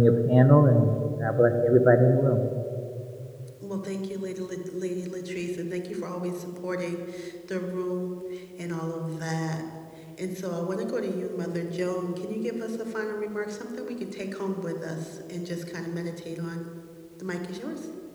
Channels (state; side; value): identical; both; correlation 1.00